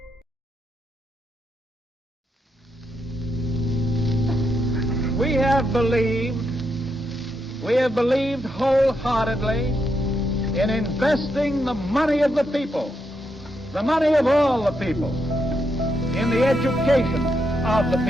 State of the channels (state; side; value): normal; both; correlation 0.81